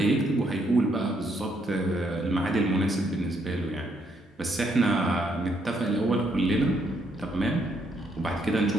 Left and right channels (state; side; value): normal; both; correlation 0.73